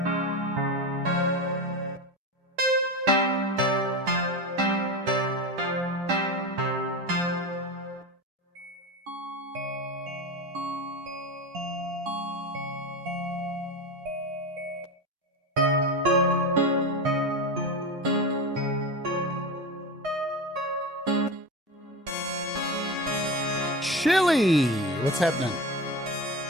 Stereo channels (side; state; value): both; normal; correlation 0.23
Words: Chili, what's happening?